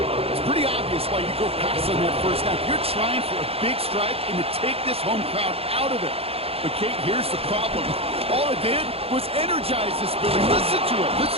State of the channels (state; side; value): late; left; 0.28 ms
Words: It's pretty obvious why you go pass on that first down. You're trying for a big strike and to take this home crowd out of it. But, Kate, here's the problem. All it did was energize this building. Listen to it.